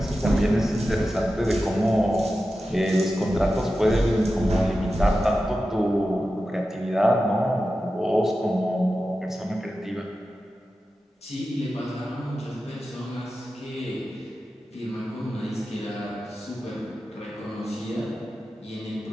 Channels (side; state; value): both; normal; correlation 0.92